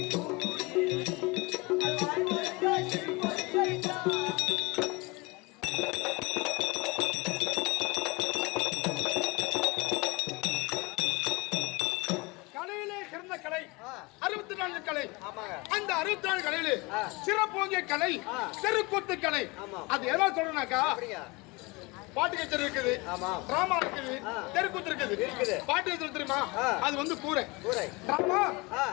அந்த 64 கலையில சிறப்போங்கிய கலை தெருக்கூத்து கலை. அது எதா சொல்றனாக்கா பாட்டு கச்சேரி இருக்குது, டிராமா இருக்குது, தெருக்கூத்து இருக்குது. பாட்டு கச்சேரி தெரியுமா? அது வந்து கூரை. டிராமா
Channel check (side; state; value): right; quieter; 25.6 dB